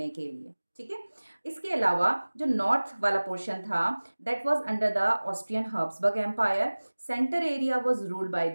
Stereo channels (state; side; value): inverted; both; correlation -1.00